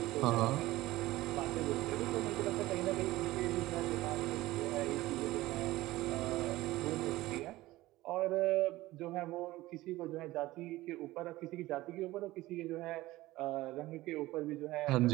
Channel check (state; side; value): quieter; left; 17.8 dB